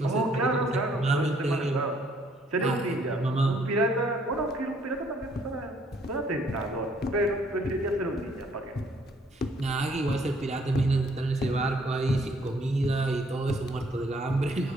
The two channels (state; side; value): normal; both; correlation 0.64